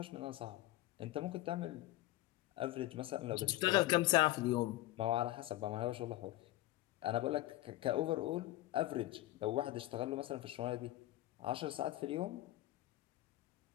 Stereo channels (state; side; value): quieter; right; 16.7 dB